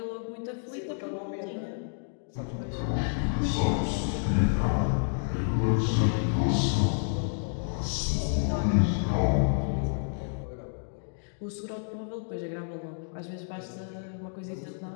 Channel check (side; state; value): right; silent; digital silence